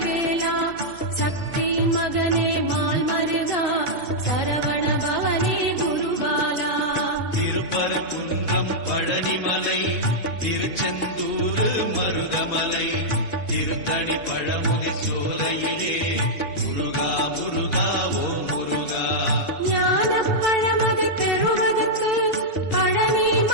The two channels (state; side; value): late; right; 2.8 ms